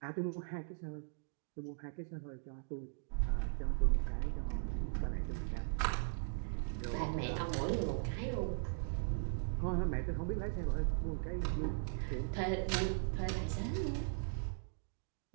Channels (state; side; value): silent; left; digital silence